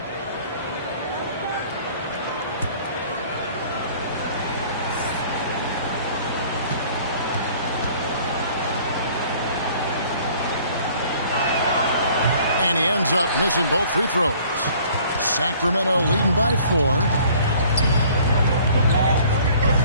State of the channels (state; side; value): inverted; both; correlation -0.54